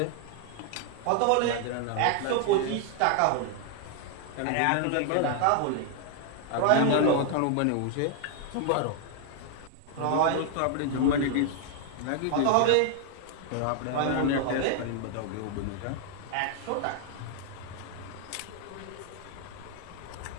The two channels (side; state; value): both; different; correlation 0.00